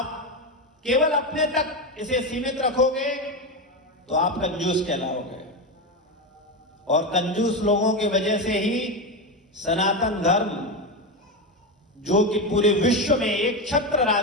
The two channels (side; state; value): both; normal; correlation 0.15